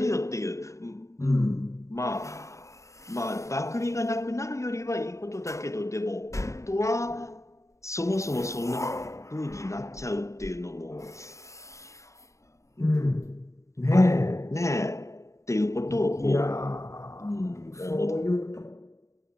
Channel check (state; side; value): late; right; 0.15 ms